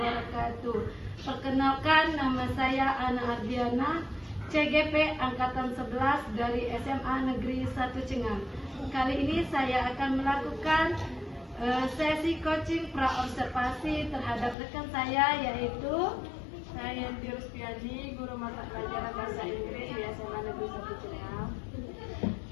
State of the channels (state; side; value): drops out; right; at 14.6 s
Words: Perkenalkan, nama saya Ana Ardiana, CGP Angkatan 11 dari SMA Negeri 1 Cengham. Kali ini saya akan melakukan sesi coaching praobservasi terhadap rekan saya, yaitu saya Yanti Ruspiani, guru mata pelajaran bahasa Inggris di SMA Negeri 1 Cengham.